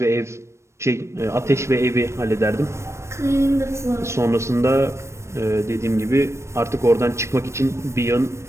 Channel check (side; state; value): left; late; 0.13 ms